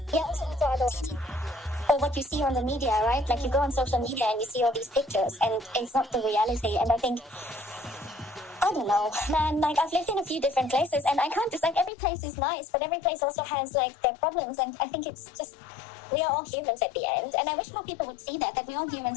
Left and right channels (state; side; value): drops out; right; at 11.9 s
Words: Yeah, also or what you see on the media, right? Like you go on social media and you see all these pictures, and it's not the reality. And I think, I don't know, man, like I've lived in a few different places, and I can't just, like, every place is nice, but every place also has like their problems, and I think it's just, we are all humans at the end, and I wish more people would see that we're all humans